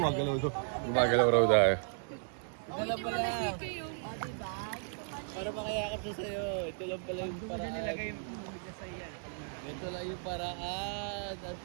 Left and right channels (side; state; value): left; silent; 55 dB below the other